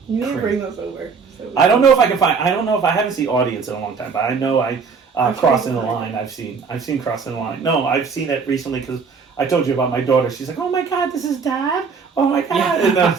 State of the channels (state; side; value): quieter; left; 5.4 dB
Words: need to bring those over. I don't know if I can find. I don't know if I haven't seen audience in a long time, but I know I Crossing the Line. I've seen Crossing the Line. No, I've seen it recently because I told you about my daughter. She's like, oh my God, this is Dad. Oh my God. Yeah. And